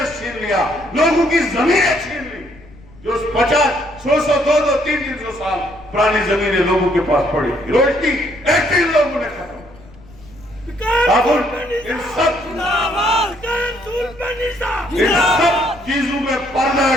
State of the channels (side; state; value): left; noise; rumble, 23 dB below the sound